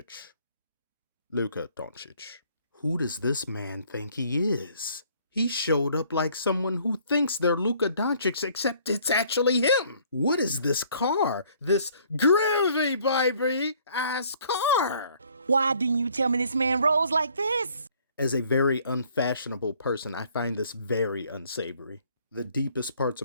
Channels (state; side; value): inverted; both; correlation -0.60